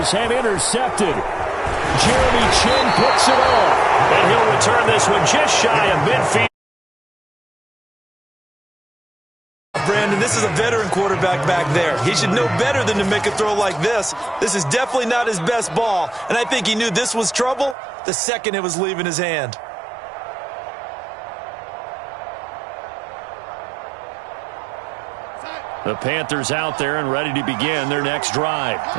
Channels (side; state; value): left; drops out; at 17.8 s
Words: and intercepted. Jeremy Chin picks it off. And he'll return this one just shy of midfield. Brandon, this is a veteran quarterback back there. He should know better than to make a throw like this. This is definitely not his best ball, and I think he knew this was trouble the second it was leaving his hand. The Panthers out there and ready to begin their next drive